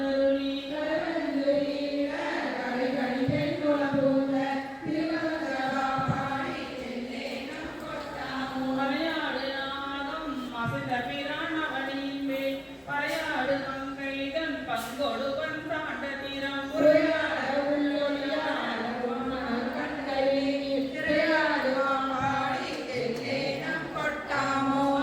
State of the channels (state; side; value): identical; both; correlation 1.00